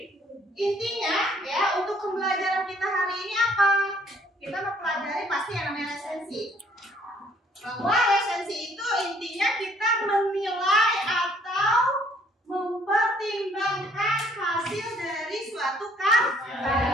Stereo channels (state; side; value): normal; both; correlation 0.62